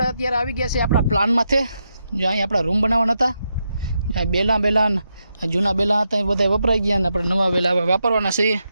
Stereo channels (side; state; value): both; inverted; correlation -0.84